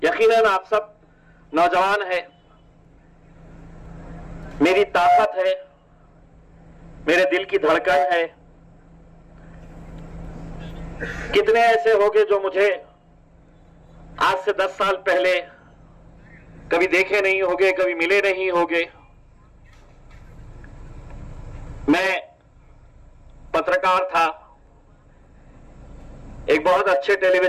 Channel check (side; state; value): both; identical; correlation 1.00